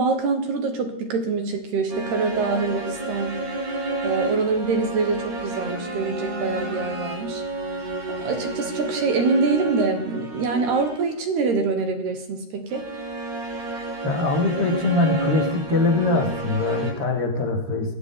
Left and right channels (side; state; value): left; late; 13 ms